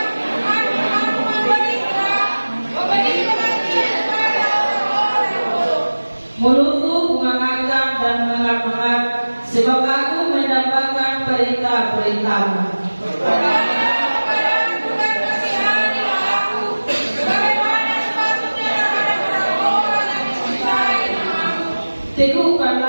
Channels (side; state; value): both; inverted; correlation -1.00